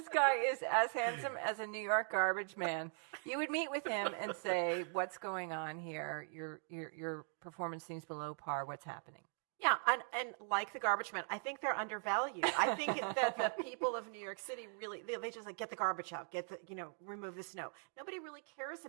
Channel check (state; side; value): silent; left; 51 dB below the other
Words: guy is as handsome as a New York garbage man, you would meet with him and say, "What's going on here? Your performance seems below par. What's happening?" Yeah, and like the garbage men, I think they're undervalued. I think that the people of New York City really, they just get the garbage out, remove the snow. Nobody really cares